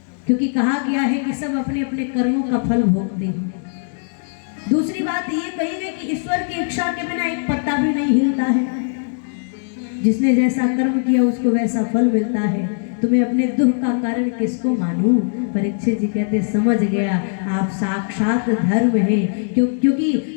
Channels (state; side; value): silent; right; digital silence